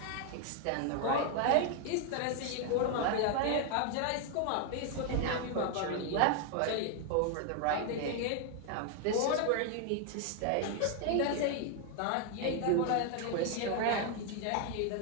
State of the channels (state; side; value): different; both; correlation 0.00